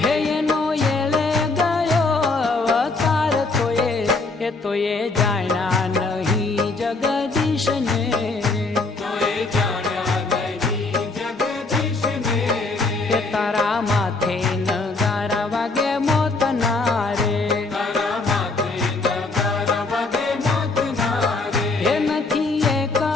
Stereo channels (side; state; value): right; quieter; 3.6 dB